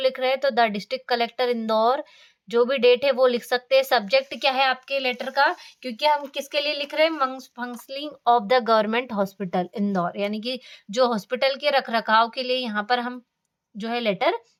रहे हैं तो द डिस्ट्रिक्ट कलेक्टर इंदौर, जो भी डेट है वो लिख सकते हैं। सब्जेक्ट क्या है आपके लेटर का, क्योंकि हम किसके लिए लिख रहे हैं, functioning of the government hospital Indore, यानी कि जो हॉस्पिटल के रख रखाव के लिए यहाँ पर हम जो है लेटर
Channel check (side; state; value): both; identical; correlation 1.00